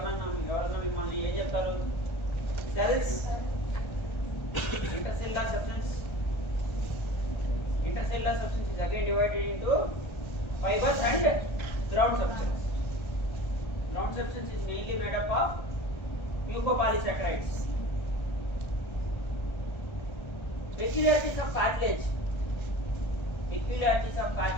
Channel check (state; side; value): late; right; 1.3 ms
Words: mimmalni em cheptaru? Cells, intercellular substance. Intercellular substance is again divided into fibers and ground substance. Ground substance is mainly made up of mucopolysaccharides. Peculiarities of cartilage.